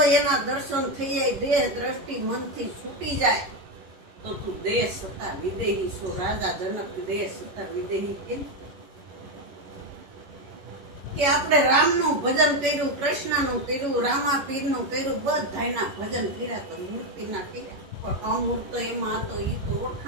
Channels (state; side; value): late; left; 11 ms